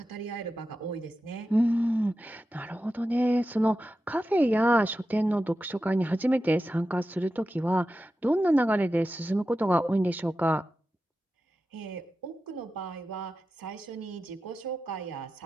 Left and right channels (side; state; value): both; normal; correlation 0.92